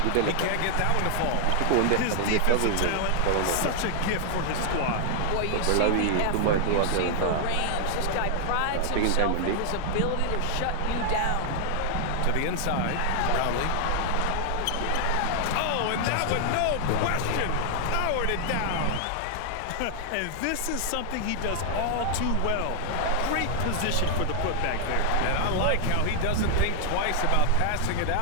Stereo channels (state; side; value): different; both; correlation 0.00